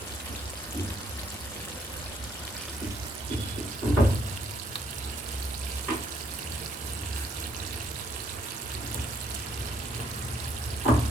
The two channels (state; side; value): normal; both; correlation 0.68